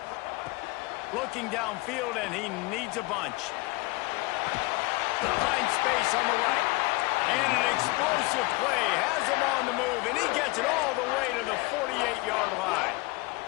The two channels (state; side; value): quieter; right; 23.6 dB